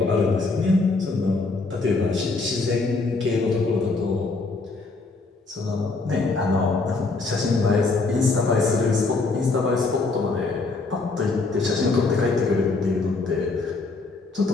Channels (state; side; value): quieter; right; 3.7 dB